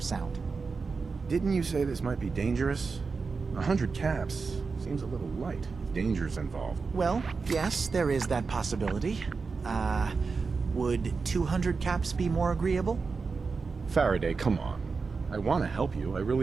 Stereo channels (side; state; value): left; quieter; 4.7 dB